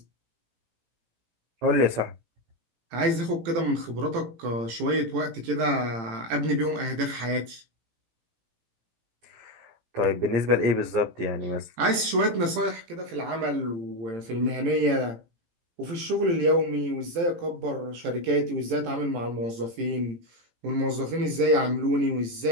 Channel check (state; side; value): late; left; 18 ms